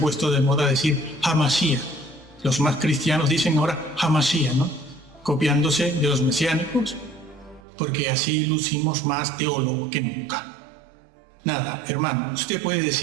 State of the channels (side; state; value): left; drops out; at 7.6 s